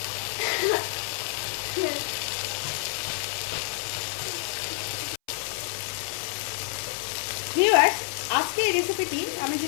ভিউয়ার্স, আজকে এই রেসিপিটি আমি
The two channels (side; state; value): right; silent; 59 dB below the other